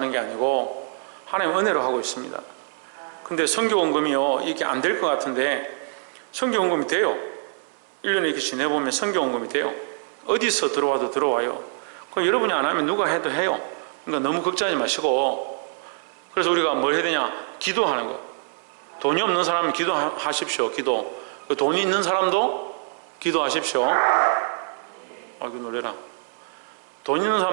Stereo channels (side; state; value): left; silent; 62 dB below the other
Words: 게 아니고 하나님 은혜로 하고 있습니다. 근데 선교원금이요, 이게 안 될 것 같은데 선교원금이 돼요. 1년에 이렇게 지내보면 선교원금이 돼요. 어디서 들어와도 들어와요. 그럼 여러분이 안 하면 누가 해도 해요. 그러니까 너무 걱정하지 마시고, 그래서 우리가 뭘 해야 되냐? 기도하는 거. 돈이 없는 사람은 기도하십시오. 기도. 돈이 있는 사람도 기도하십시오. 아이고 놀래라. 돈 있는